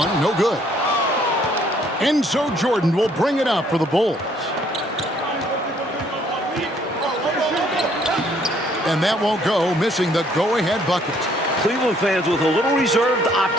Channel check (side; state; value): both; normal; correlation 0.64